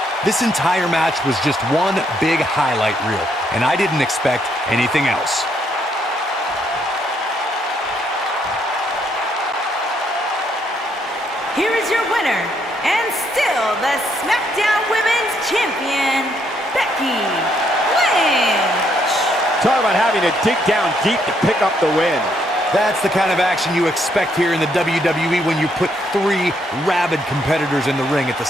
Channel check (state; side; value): normal; both; correlation 0.73